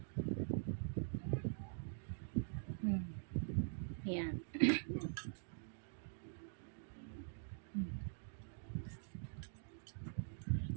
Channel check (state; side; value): silent; left; digital silence